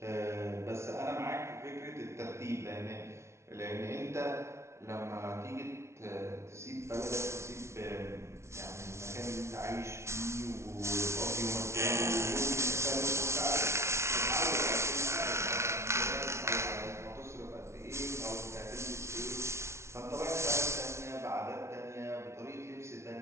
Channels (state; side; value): late; left; 0.13 ms